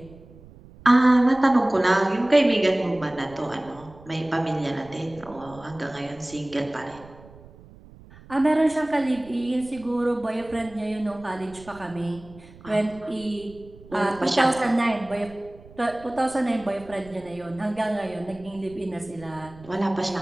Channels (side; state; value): right; noise; rumble, 21 dB below the sound